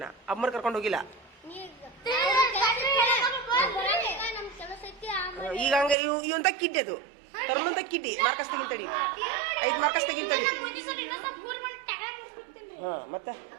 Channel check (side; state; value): left; drops out; at 6.0 s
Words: ಅಮ್ಮರ್ ಕರ್ಕೊಂಡು ಹೋಗಿಲ್ಲ? ಈಗ ಹಂಗ ಇವಂತ ಕಿಡ್ಡಿ ಅದು ತರ್ಮಂತ ಕಿಡ್ಡಿ. Marcus ತೆಗಿತಡಿ, 5 Marcus ತೆಗಿತಡಿ. ಹಾ, ಮತ್ತ